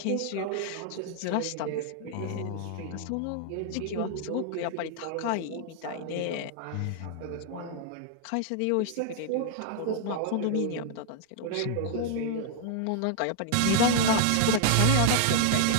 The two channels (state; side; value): different; both; correlation -0.01